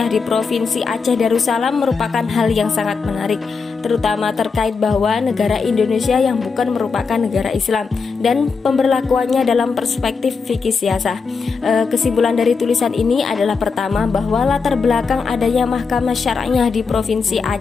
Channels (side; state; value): right; quieter; 5.0 dB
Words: di Provinsi Aceh Darussalam merupakan hal yang sangat menarik, terutama terkait bahwa negara Indonesia yang bukan merupakan negara Islam dan pemberlakuannya dalam perspektif fikih siasah. Kesimpulan dari tulisan ini adalah pertama, bahwa latar belakang adanya Mahkamah Syar'iyah di Provinsi